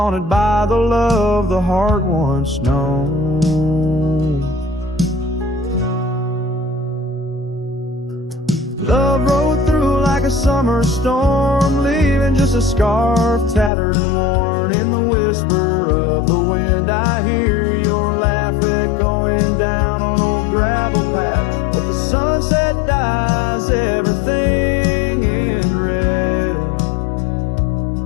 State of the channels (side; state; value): right; drops out; at 13.7 s